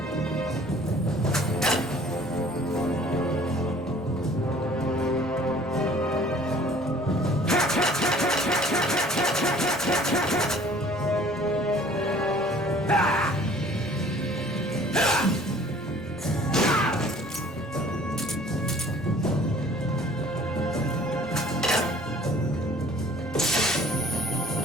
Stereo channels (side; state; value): both; normal; correlation 0.52